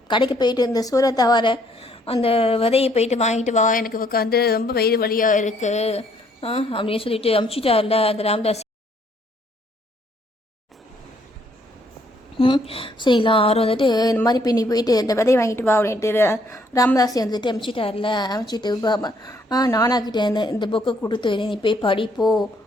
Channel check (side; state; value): both; normal; correlation 0.67